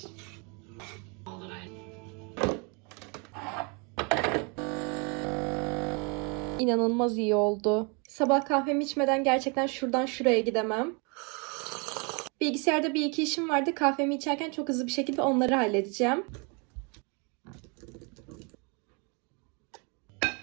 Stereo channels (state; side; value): quieter; left; 33.5 dB